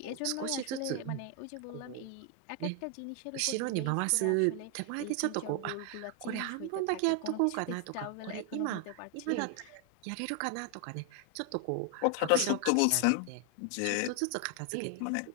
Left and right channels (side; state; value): both; different; correlation 0.01